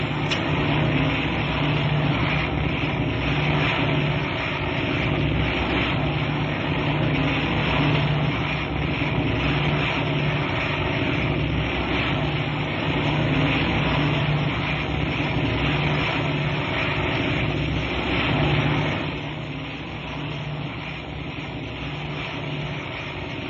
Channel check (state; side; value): identical; both; correlation 1.00